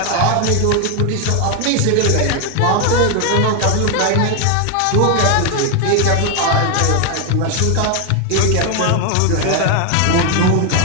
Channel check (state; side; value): different; both; correlation 0.01